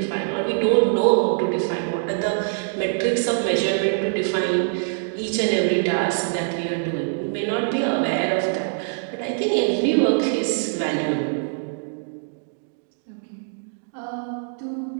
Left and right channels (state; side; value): silent; left; digital silence